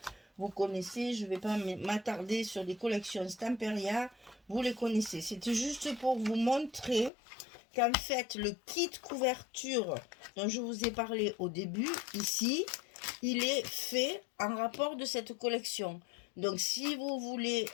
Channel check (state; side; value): drops out; right; at 7.1 s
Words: Vous connaissez, je ne vais pas m'attarder sur les collections Stamperia. Vous les connaissez. C'était juste pour vous montrer qu'en fait, le kit couverture dont je vous ai parlé au début, ici, il est fait en rapport de cette collection. Donc, si vous voulez